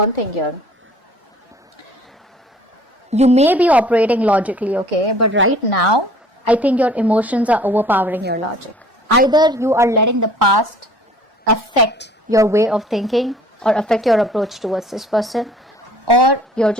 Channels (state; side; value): normal; both; correlation 0.52